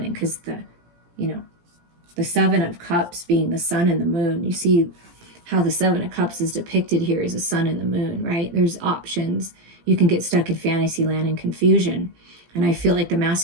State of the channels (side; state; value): left; late; 17 ms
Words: because the 7 of cups being the sun and the moon. You see how the 7 of cups is depicted here as the sun and the moon, right? There's options. You can get stuck in fantasy land and confusion. And I feel like the